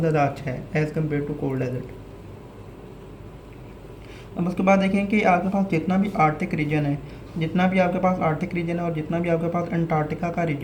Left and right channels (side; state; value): both; identical; correlation 1.00